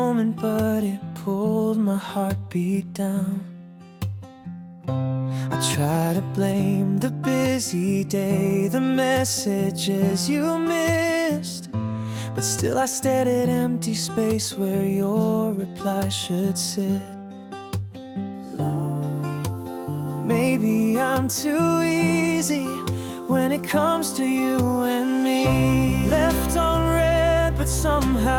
but it pulled my heartbeat down. I try to blame the busy day, the messages you missed, but still I stared at empty space where your reply should sit. Maybe I'm too easy when it comes to you and me. Left on red, but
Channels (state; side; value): identical; both; correlation 1.00